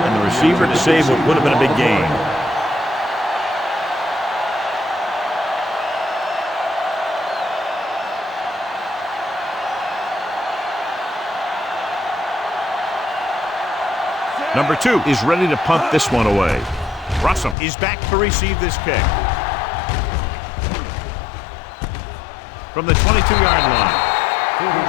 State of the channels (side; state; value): right; drops out; at 17.6 s